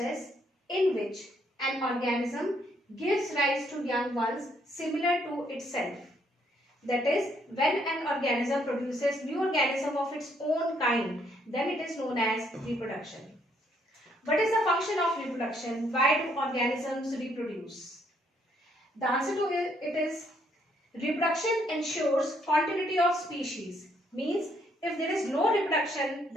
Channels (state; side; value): normal; both; correlation 0.70